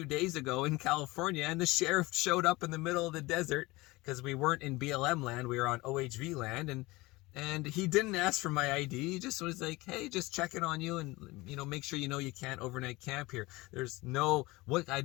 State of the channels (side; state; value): right; quieter; 21.5 dB